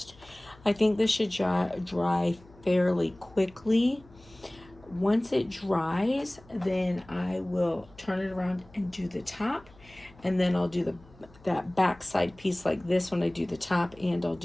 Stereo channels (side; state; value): left; noise; hum, 25 dB below the sound